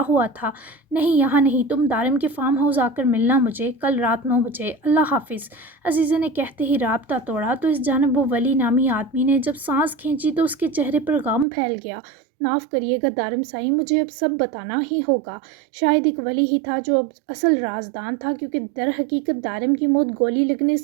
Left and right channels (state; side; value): drops out; left; at 11.5 s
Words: ہوا تھا۔ نہیں یہاں نہیں، تم دارم کے فارم ہاؤس آ کر ملنا مجھے، کل رات 9 بجے، اللہ حافظ۔ عزیزے نے کہتے ہی رابطہ توڑا تو اس جانب وہ ولی نامی آدمی نے جب سانس کھینچی تو اس کے چہرے پر غم پھیل گیا۔ معاف کریے گا دارم سائی، مجھے اب سب بتانا ہی ہوگا۔ شاید ایک ولی ہی تھا جو اب اصل رازدان تھا، کیونکہ در حقیقت دارم کی موت گولی لگنے